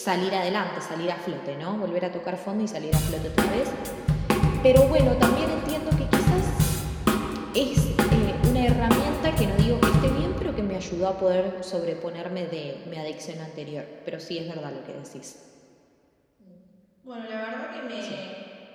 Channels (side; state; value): both; identical; correlation 1.00